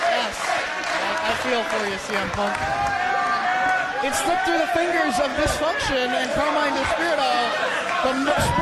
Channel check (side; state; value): both; identical; correlation 1.00